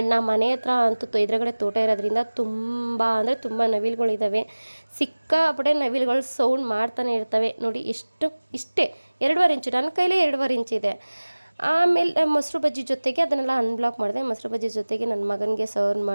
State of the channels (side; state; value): both; inverted; correlation -1.00